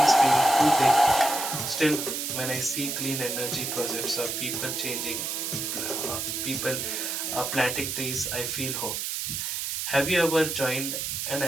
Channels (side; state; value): right; noise; hiss, 3 dB below the sound